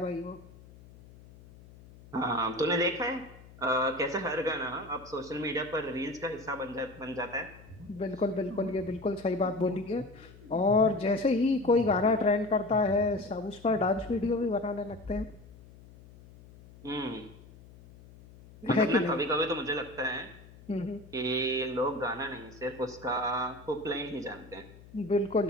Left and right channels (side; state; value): left; noise; hum, 21 dB below the sound